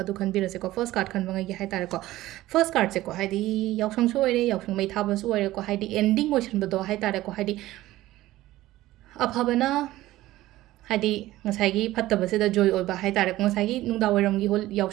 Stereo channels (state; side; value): quieter; left; 16.2 dB